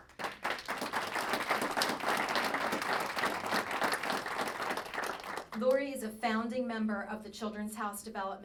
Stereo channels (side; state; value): both; identical; correlation 1.00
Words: Lori is a founding member of the Children's House